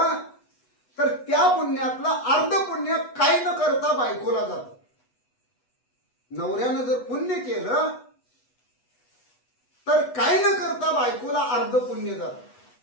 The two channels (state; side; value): late; right; 8.1 ms